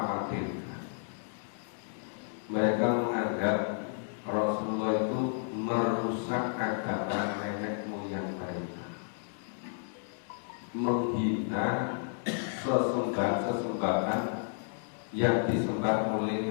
Mereka menganggap Rasulullah itu merusak agama nenek moyang mereka, menghina sesembahan yang disembah oleh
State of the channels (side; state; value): right; silent; digital silence